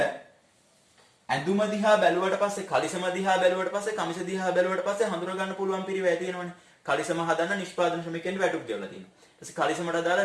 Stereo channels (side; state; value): both; identical; correlation 1.00